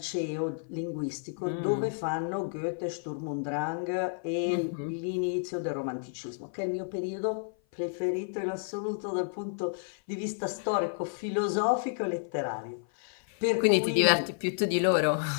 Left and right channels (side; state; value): right; silent; 55 dB below the other